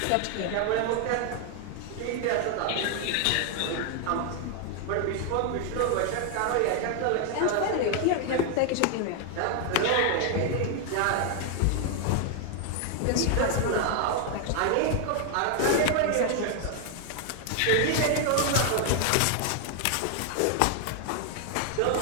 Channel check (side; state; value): both; different; correlation 0.00